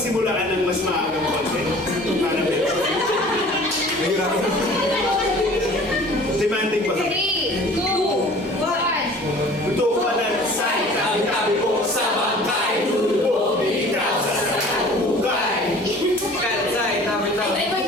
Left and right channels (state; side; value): normal; both; correlation 0.47